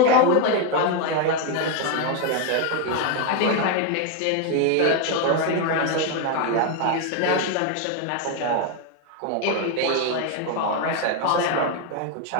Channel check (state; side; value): different; both; correlation 0.01